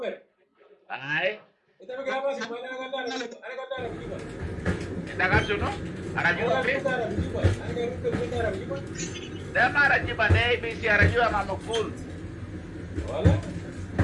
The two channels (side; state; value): both; identical; correlation 1.00